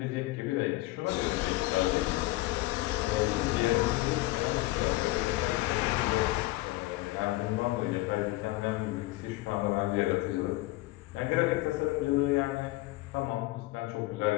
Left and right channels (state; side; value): quieter; right; 19.5 dB